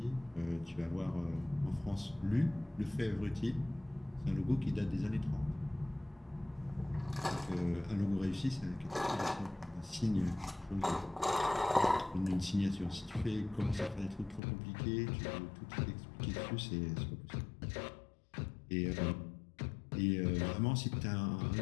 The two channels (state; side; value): drops out; right; at 14.4 s